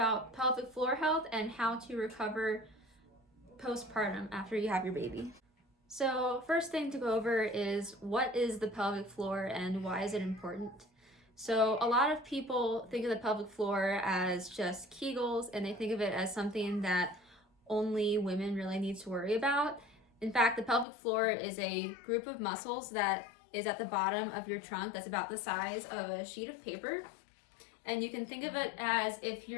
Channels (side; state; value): right; drops out; at 20.9 s